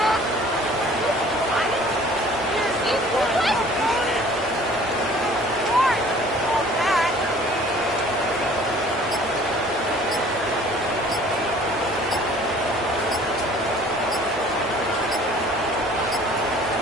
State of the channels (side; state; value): both; normal; correlation 0.51